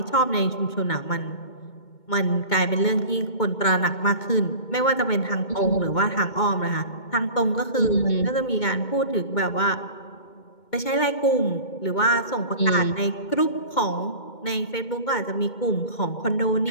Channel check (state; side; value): late; right; 2.2 ms